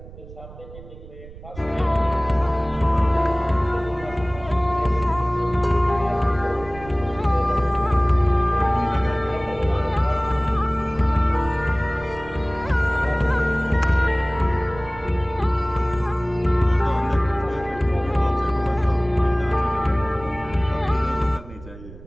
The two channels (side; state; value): right; noise; rumble, 17 dB below the sound